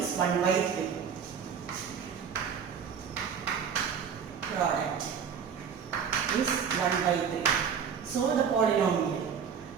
1 by 3. Product is 1 by 3. So the polynomial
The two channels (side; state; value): left; quieter; 7.1 dB